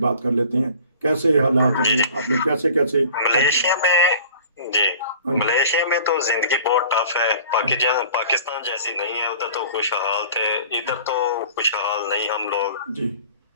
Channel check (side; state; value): both; inverted; correlation -0.46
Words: बात कर लेते हैं, कैसे हालात जी हैं, जी, आपने कैसे कैसे। मलेशिया में जी, हाँ जी, मलेशिया में तो जिंदगी बहुत टफ है। पाकिस्तान जैसी नहीं है। उधर तो खुशहाल थे, इधर तो खुशहाल नहीं हम लोग। जी